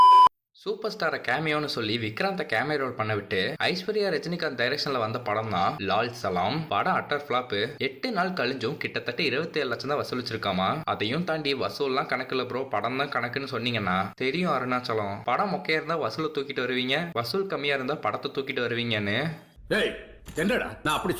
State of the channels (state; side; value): identical; both; correlation 1.00